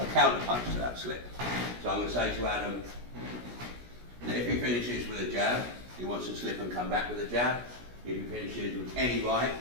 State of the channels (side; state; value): left; late; 17 ms